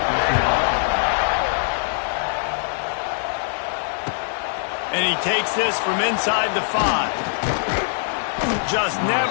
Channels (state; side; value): silent; right; digital silence